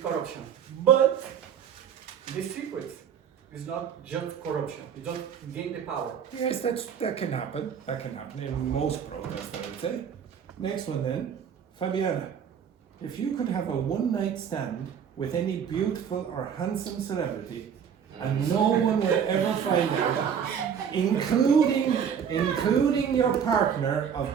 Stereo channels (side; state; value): left; quieter; 7.8 dB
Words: corruption, but the secret is not just corruption. You don't gain the power. Yes, that can happen. That can happen in most protests, I would say. Next one then. Fabiana, if you could have a one-night stand with any beautiful or handsome celebrity and no one would ever find out, including your partner of